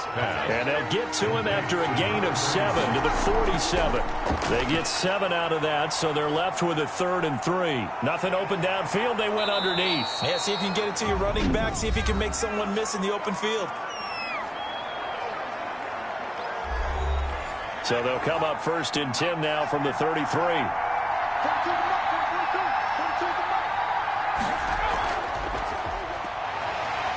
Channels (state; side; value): identical; both; correlation 1.00